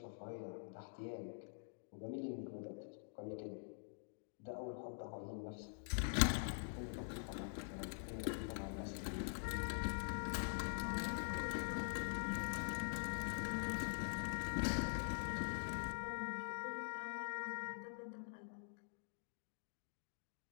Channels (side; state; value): right; silent; digital silence